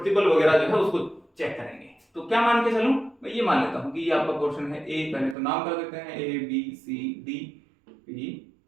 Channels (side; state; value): left; drops out; at 5.4 s